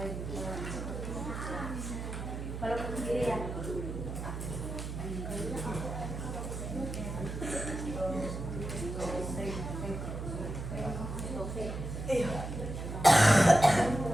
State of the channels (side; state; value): right; noise; hum, 6 dB below the sound